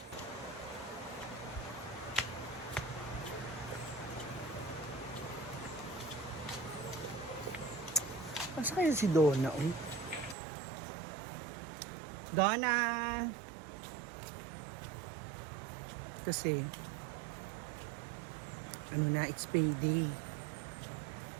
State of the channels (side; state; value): left; drops out; at 10.4 s